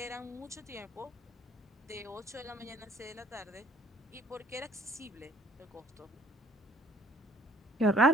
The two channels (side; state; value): both; normal; correlation 0.57